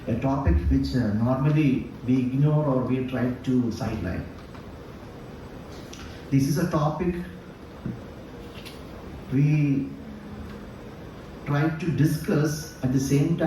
a topic which normally we ignore or we try to sideline. This is a topic we try to discuss, at the same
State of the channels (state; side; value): identical; both; correlation 1.00